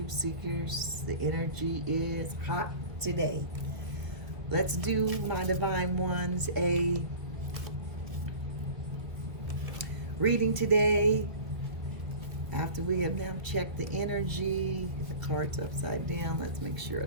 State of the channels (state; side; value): late; left; 1.7 ms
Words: seekers, the energy is hot today. Let's do, my divine ones, a reading today. After we have now checked the energy, the card's upside down. Let's make sure